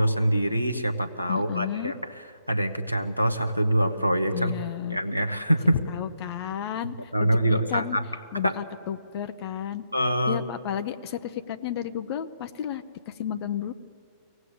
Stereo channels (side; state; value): both; inverted; correlation -0.80